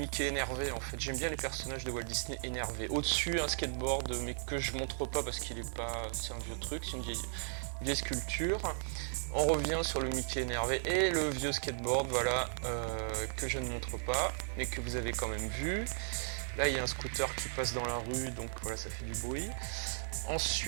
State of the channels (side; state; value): left; silent; digital silence